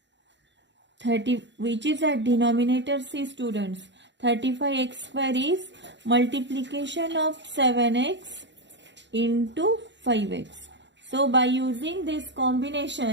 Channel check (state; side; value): late; left; 0.52 ms